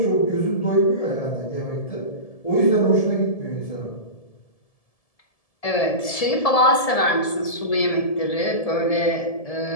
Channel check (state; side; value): late; right; 1.7 ms